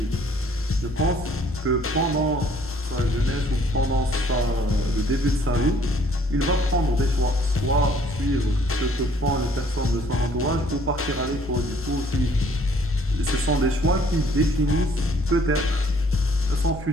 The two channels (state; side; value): normal; both; correlation 0.60